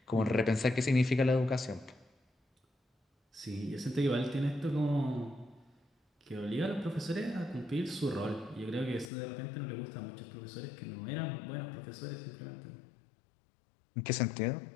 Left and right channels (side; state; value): right; drops out; at 9.1 s